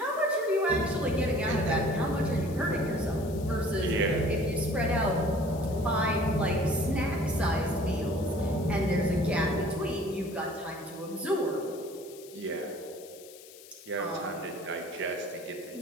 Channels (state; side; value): noise; left; hiss, 19 dB below the sound